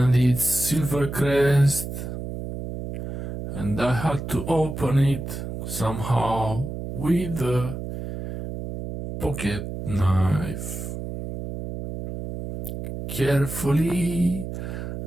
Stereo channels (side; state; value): right; noise; hum, 7 dB below the sound